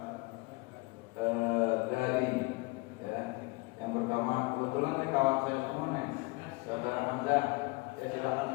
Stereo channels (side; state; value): right; quieter; 26.2 dB